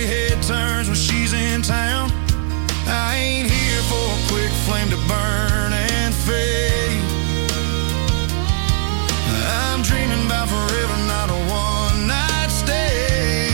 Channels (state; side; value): silent; left; digital silence